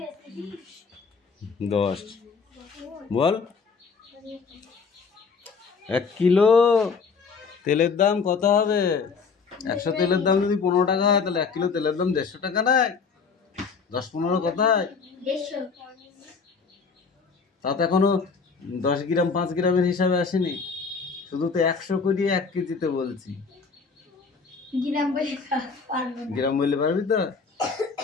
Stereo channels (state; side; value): quieter; right; 5.2 dB